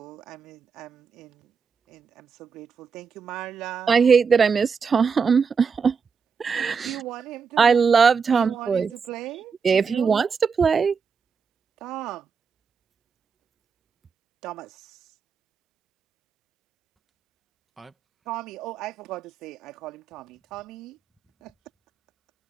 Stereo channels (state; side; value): quieter; left; 5.8 dB